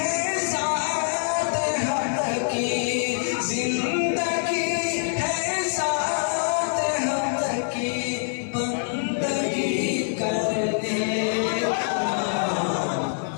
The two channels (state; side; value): silent; right; digital silence